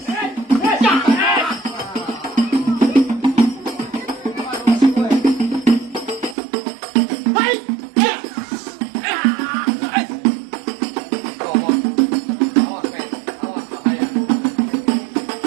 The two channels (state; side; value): drops out; left; at 6.4 s